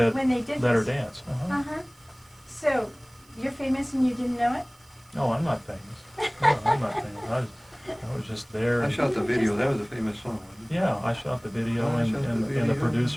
Let Her this. Dance. Uh-huh. So you're famous and you didn't know it? No, I'm not famous. No, I'm not famous. I was just there. it. I shot the video. That was a famous song, wasn't it? Yeah, I shot the video, Oh, I and shot the the video.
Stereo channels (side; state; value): right; noise; hiss, 29 dB below the sound